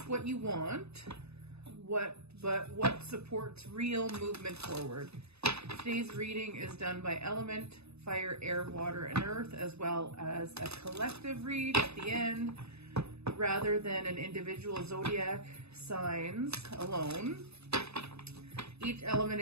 what you want, but what supports real movement forward. Today's reading is done by element, fire, air, water, and earth, as well as a collective read at the end, rather than an individual zodiac signs alone. Each element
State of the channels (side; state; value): left; late; 0.79 ms